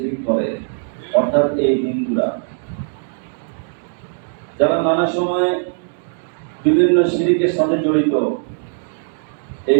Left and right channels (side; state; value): left; silent; digital silence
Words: করে, অর্থাৎ এই হিন্দুরা, যারা নানা সময়ে বিভিন্ন শিরকের সাথে জড়িত।